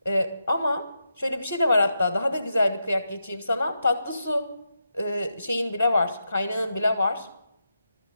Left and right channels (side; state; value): both; inverted; correlation -0.86